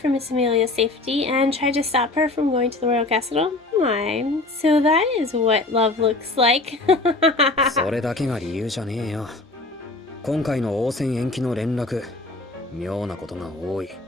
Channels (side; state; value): right; quieter; 3.1 dB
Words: Miss Amelia's safety and tried to stop her from going to the royal castle? My, so that is what love looks like. それだけが理由じゃねえよ。今回の応戦延期の連絡、妙なことが多い。